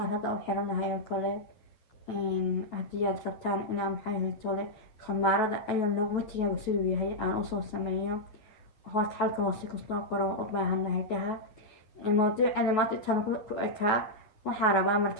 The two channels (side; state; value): right; late; 9.2 ms